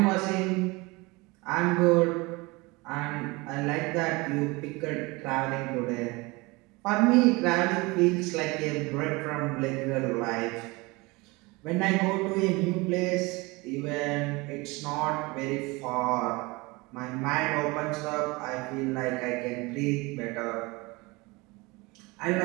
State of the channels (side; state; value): left; quieter; 24.5 dB